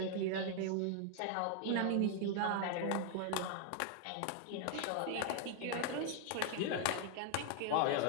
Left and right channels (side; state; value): both; different; correlation 0.00